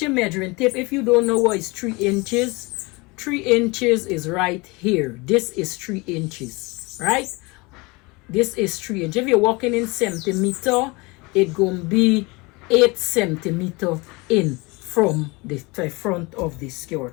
your measuring tape. If you don't know what is 3 inches, 3 inches is right here. This is 3 inches, right? This is 3 inches. If you're walking in centimeter, it's going to be 8 centimeter in from the front of the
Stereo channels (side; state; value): right; quieter; 25.5 dB